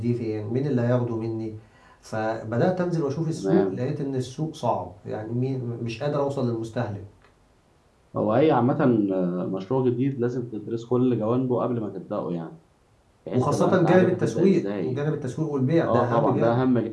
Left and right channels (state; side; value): identical; both; correlation 1.00